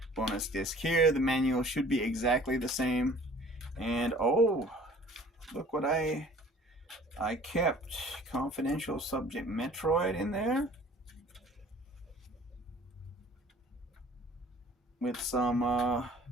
Bonus disc here. The manual should be exactly the same. And oh, look what I kept. Confidential subject Metroid in there. With some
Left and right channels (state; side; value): normal; both; correlation 0.50